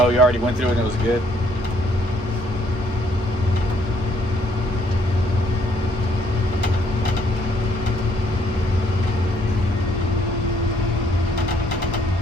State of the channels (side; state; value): both; normal; correlation 0.67